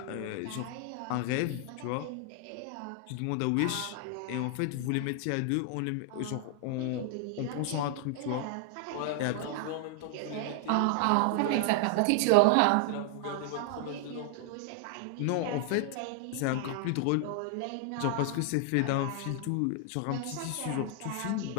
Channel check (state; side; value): different; both; correlation 0.00